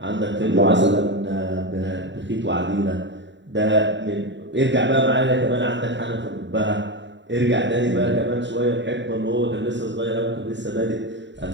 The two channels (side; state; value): left; late; 0.53 ms